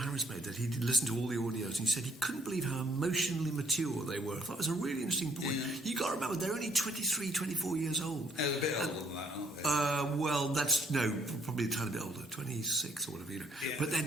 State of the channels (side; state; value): both; normal; correlation 0.66